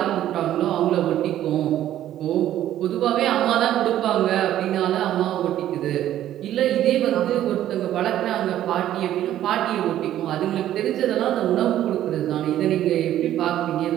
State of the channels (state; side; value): quieter; left; 12.3 dB